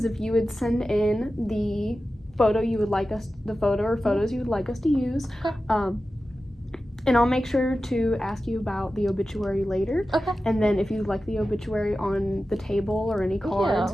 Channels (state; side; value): normal; both; correlation 0.94